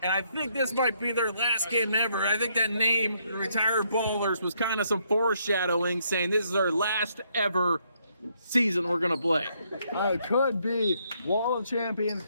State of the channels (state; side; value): inverted; both; correlation -0.72